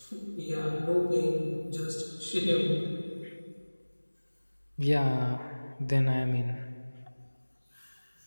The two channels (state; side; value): inverted; both; correlation -1.00